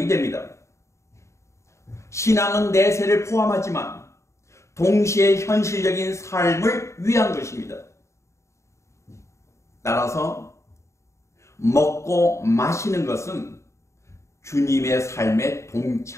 됩니다. 신앙은 내세를 포함하지만 동시에 현실적인 삶을 위한 것입니다. 따라서 먹고 마시는 것은 주님의 삶에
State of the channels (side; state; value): right; late; 0.14 ms